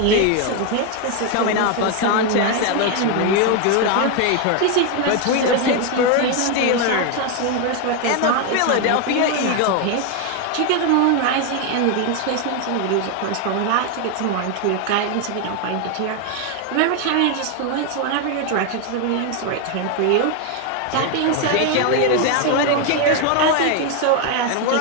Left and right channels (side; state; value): both; different; correlation 0.01